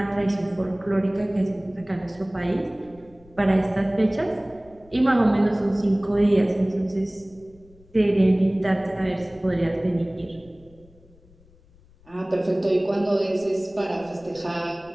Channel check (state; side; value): noise; left; rumble, 27 dB below the sound